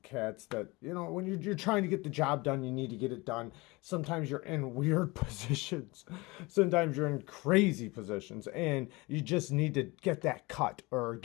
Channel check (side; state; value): right; quieter; 23.8 dB